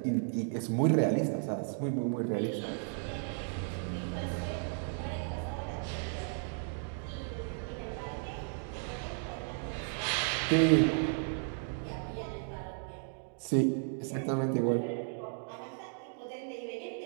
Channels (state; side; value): silent; left; 55 dB below the other